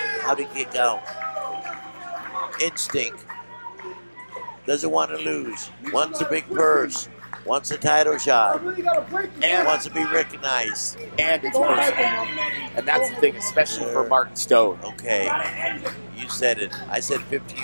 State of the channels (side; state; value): both; inverted; correlation -1.00